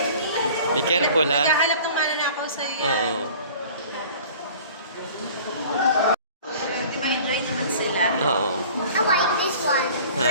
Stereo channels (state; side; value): inverted; both; correlation -0.46